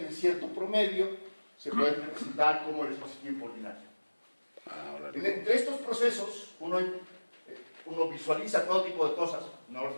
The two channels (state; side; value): inverted; both; correlation -1.00